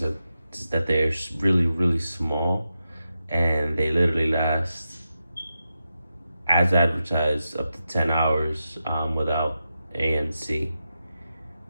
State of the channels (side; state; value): both; inverted; correlation -0.89